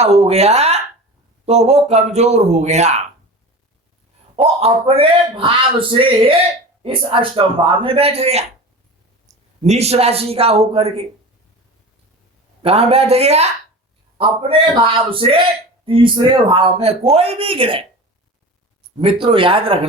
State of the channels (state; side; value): normal; both; correlation 0.33